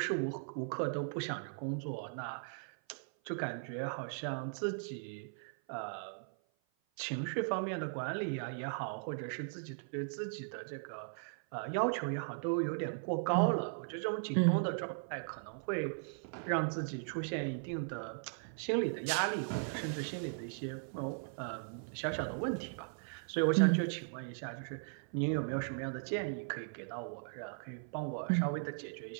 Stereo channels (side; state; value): left; silent; 52 dB below the other